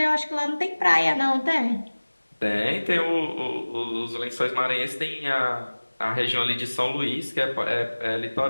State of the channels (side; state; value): both; inverted; correlation -1.00